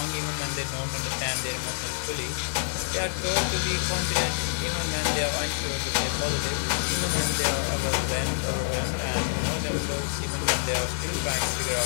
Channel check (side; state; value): right; silent; digital silence